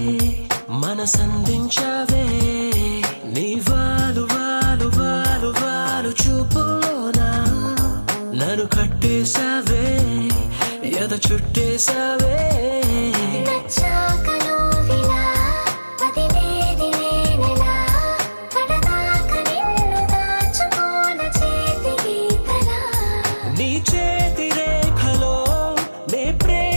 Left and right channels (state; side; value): inverted; both; correlation -1.00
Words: మనసందించావే నీ వాలు వాలు వాలు వాలు చూపులోనా నన్ను కట్టేశావే ఎద చుట్టేశావే నచ్చాక నువ్విలా వదిలేది నేనెలా కడదాక నిన్ను దాచుకోన చేతి గీతలా నీ చేతి రేఖలో నే